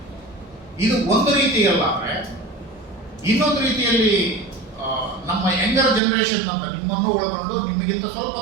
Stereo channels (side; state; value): left; drops out; at 6.0 s